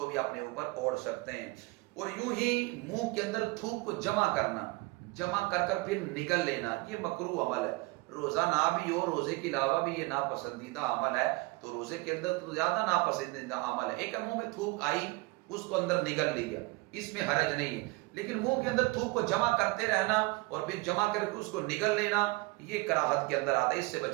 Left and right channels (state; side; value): quieter; left; 24.4 dB